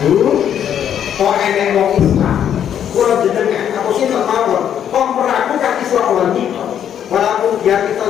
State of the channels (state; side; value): quieter; right; 9.4 dB